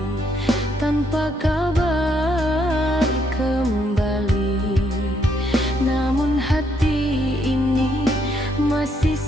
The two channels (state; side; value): normal; both; correlation 0.73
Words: tanpa kabar kembali, namun hati ini masih